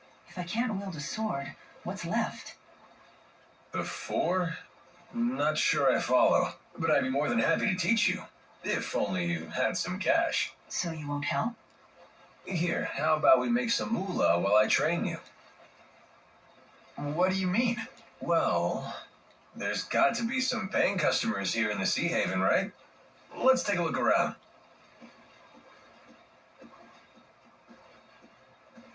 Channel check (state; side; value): identical; both; correlation 1.00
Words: If I can't wield a sword, what's left? The 4? Not sure I follow, but I'd be more than happy to teach you. If only you had some cash. So you won't help? Here, how about we make some moolah while I train you? What do you mean? Well, there's got to be some paying customers here in the Sea Haven, right? Let's take a look around.